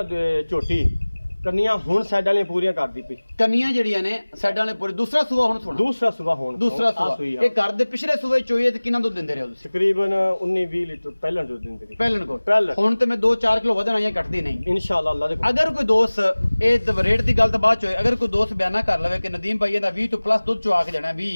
ਝੋਟੀ ਕੰਨੀਆਂ ਹੁਣ ਸਾਈਡ ਵਾਲੀਆਂ ਪੂਰੀਆਂ ਕਰਦੀ ਪਈ ਕੰਨੀਆਂ ਜਿਹੜੀਆਂ ਨੇ ਸਾਈਡਾਂ ਵਾਲੇ ਪੂਰੇ ਦੂਸਰਾ ਸੂਆ ਹੁਣ ਸੁਣਾ ਦੂਸਰਾ ਸੂਆ ਹੋਣ ਦੂਸਰਾ ਆਹ ਸੂਆ ਸੂਈ ਆ। ਇਹ ਘਰ ਦੇ ਪਿਛਲੇ ਸੂਏ ਚੋਈਏ ਤੇ ਕਿੰਨਾ ਦੁੱਧ ਦਿੰਦੇ ਰਹੇ ਹੋ ਤੁਸੀਂ ਤਕਰੀਬਨ 19-20 ਲੀਟਰ ਪਹਿਲਾਂ ਦੁੱਧ ਦਿੰਦੇ ਸੀ ਪਹਿਲਣ ਕੋਲ ਪਹਿਲਣ। ਹੁਣ ਤੇ ਮੈਂ 2-4 ਕਿਲੋ ਵਧਣ ਆਈਆਂ ਕੱਟਦੀ ਨਹੀਂ ਇਨਸ਼ਾਅੱਲਾ ਅੱਲਾ ਦੇ ਅਗਰ ਕੋਈ ਦੋਸਤ ਇਹ ਰੇਟ ਦੀ ਗੱਲ ਤਾਂ ਬਾਅਦ ਚ ਹੋਏ ਅਗਰ ਕੋਈ ਦੋਸਤ ਬਿਆਨਾ ਕਰ ਲਵੇ ਕਿ ਨਦੀਮ ਭਾਈ ਇਹਦਾ 20 ਤੋਂ ਪਲੱਸ ਦੁੱਧ ਚੁਆ ਕੇ ਜਾਣਾ 20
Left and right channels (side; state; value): both; inverted; correlation -1.00